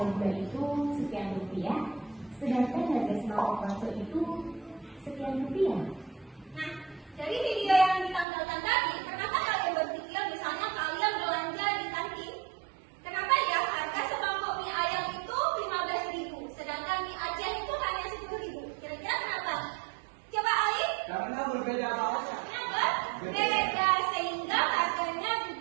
gula itu sekian rupiah, sedangkan harga sembako konsul itu sekian rupiah? Nah, dari video yang ditampilkan tadi, kenapa kalian berpikir misalnya kalian belanja di kantin? Kenapa ya harga semangkok mie ayam itu 15.000, sedangkan mie Aceh itu hanya 10.000? Kira-kira kenapa? Coba Ali. karena berbeda banget. Kenapa? Beda, sehingga harganya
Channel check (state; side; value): drops out; left; at 8.2 s